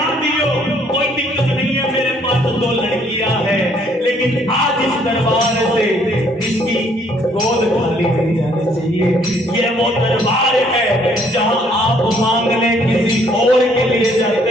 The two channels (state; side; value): normal; both; correlation 0.64